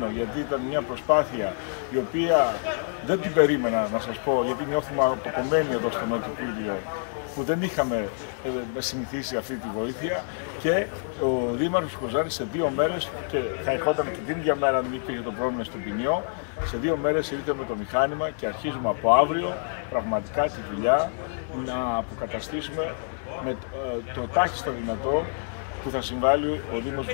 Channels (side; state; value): right; silent; digital silence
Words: γιατί ήταν μια προσπάθεια η οποία δεν την περίμενα, να σας πω, γιατί νιώθουμε αποκομμένοι εδώ στο Νότιο Πύλιο που δεν είχαμε συνηθίσει αυτή τη βοήθεια, και ο Δήμαρχος Κοζάνης σε 2 μέρες, και θα ερχόταν και την ίδια μέρα αν υπήρχε το πρόβλημα στον ποινιό, σε 2 μέρες ήρθε με το μηχάνημα και αρχίζουμε από αύριο πραγματικά τη δουλειά να αποκαταστήσουμε με το τάχιστο δυνατό που θα συμβάλλει ο Δήμος